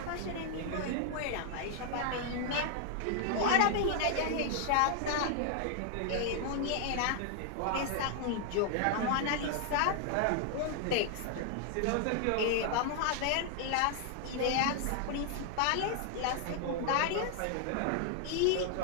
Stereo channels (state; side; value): different; both; correlation 0.00